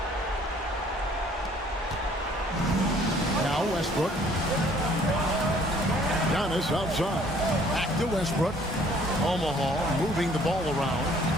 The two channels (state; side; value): normal; both; correlation 0.58